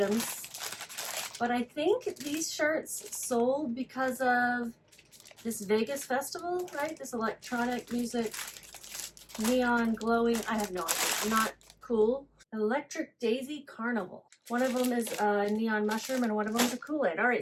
but I think these shirts sold because of this Vegas festival, right? This electronic music, neon glowing, I have no idea, not cool. Electric Daisy Carnival. One of them is a neon mushroom and one of them is a Kool-Aid. All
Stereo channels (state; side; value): identical; both; correlation 1.00